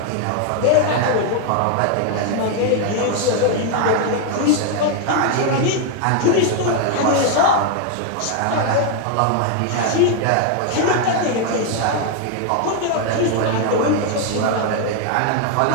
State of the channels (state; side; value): different; both; correlation 0.00